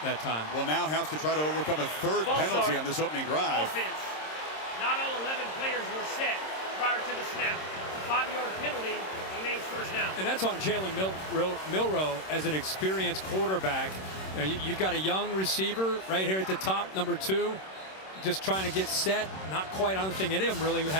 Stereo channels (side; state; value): right; late; 26 ms